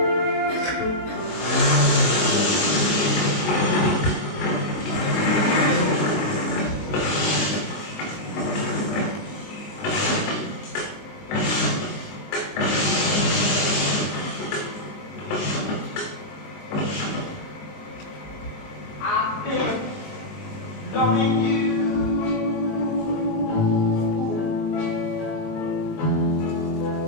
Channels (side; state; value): right; late; 19 ms